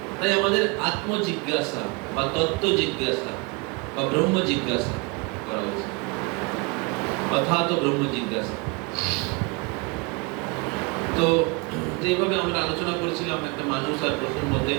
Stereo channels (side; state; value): left; quieter; 29.1 dB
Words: তাই আমাদের আত্মজিজ্ঞাসা বা তত্ত্ব জিজ্ঞাসা বা ব্রহ্ম জিজ্ঞাসা করা উচিত, অর্থাৎ ব্রহ্ম জিজ্ঞাসা। তো এইভাবে আমরা আলোচনা করেছিলাম একটা মানুষ আর পশুর মধ্যে